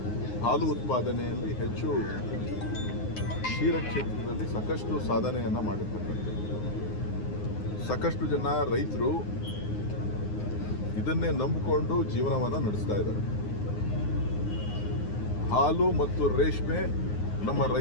ಹಾಲು ಉತ್ಪಾದನೆಯಲ್ಲಿ ಹೆಚ್ಚು ಕ್ಷೀರ ಕ್ಷೇತ್ರದಲ್ಲಿ ಸಾಕಷ್ಟು ಸಾಧನೆಯನ್ನು ಮಾಡಿರ್ತಕ್ಕಂಥದ್ದು. ಸಾಕಷ್ಟು ಜನ ರೈತರು ಇದನ್ನೇ ನಂಬಿಕೊಂಡು ಜೀವನವನ್ನು ನಡೆಸ್ತಾ ಇದ್ದಾರೆ. ಹಾಲು ಮತ್ತು ರೇಷ್ಮೆ ನಮ್ಮ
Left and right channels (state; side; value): late; right; 9.6 ms